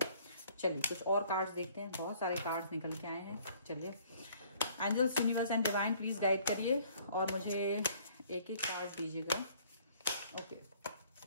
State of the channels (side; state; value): both; inverted; correlation -0.58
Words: चलिए कुछ और कार्ड्स देखते हैं, बहुत सारे कार्ड्स निकल के आए हैं। चलिए angels, universe and divine please guide करिए और मुझे एक एक कार्ड दीजिएगा। ओके,